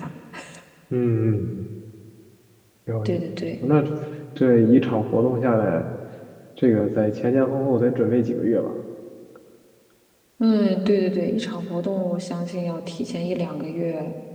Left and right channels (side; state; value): both; identical; correlation 1.00